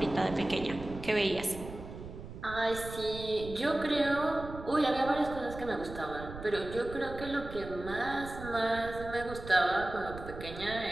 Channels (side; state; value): right; noise; rumble, 12 dB below the sound